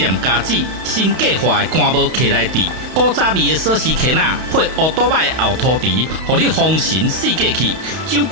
家子，新计划的干无客来地，古早味的锁匙圈仔配乌多摆的后涂池，互你丰神四界去。酒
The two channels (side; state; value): left; late; 31 ms